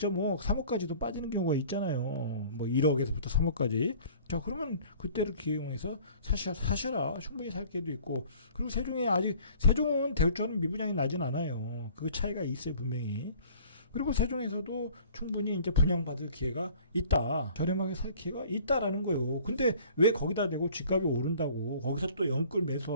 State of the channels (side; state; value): both; inverted; correlation -0.50